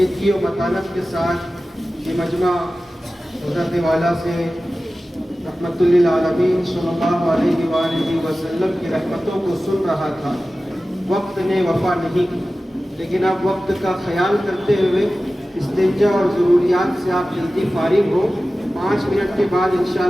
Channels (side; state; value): both; normal; correlation 0.95